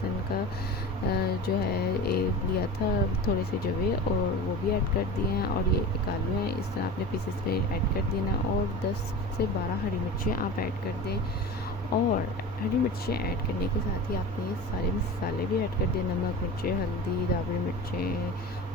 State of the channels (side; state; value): both; normal; correlation 0.32